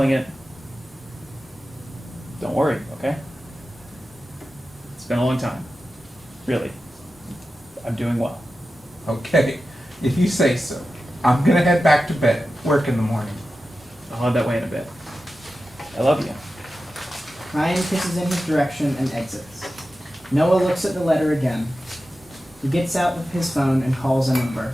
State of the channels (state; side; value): normal; both; correlation 0.93